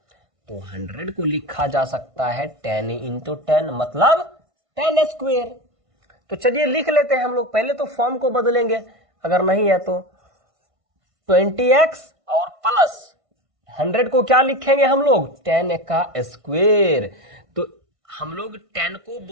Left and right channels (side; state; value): left; late; 1.5 ms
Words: तो 100 को लिखा जा सकता है 10 इंटू 10 मतलब 10 स्क्वायर। तो चलिए लिख लेते हैं हम लोग, पहले तो फॉर्म को बदलेंगे, अगर नहीं है तो 20x और प्लस 100 को क्या लिखेंगे हम लोग, 10 का स्क्वायर। तो हम लोग 10 को